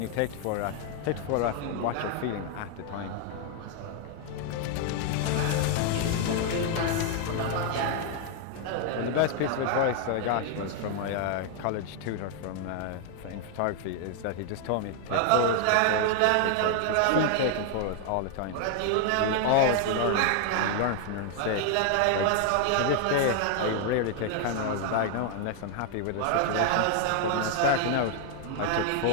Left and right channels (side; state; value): both; different; correlation 0.00